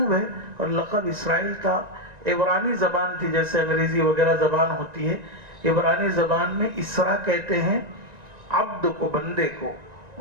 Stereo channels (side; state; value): left; late; 1.9 ms